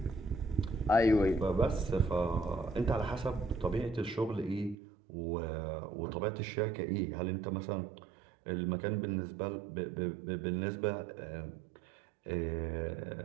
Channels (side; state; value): left; drops out; at 4.8 s